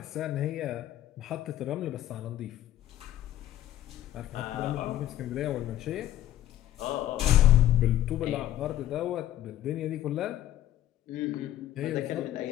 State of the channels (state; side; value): quieter; right; 13.1 dB